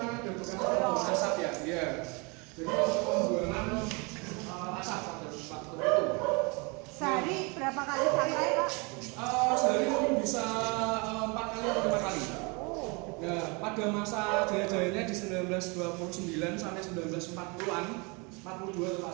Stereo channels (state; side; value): quieter; left; 29.9 dB